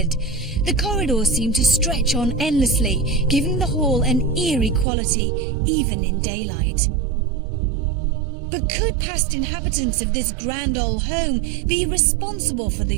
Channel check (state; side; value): drops out; left; at 4.9 s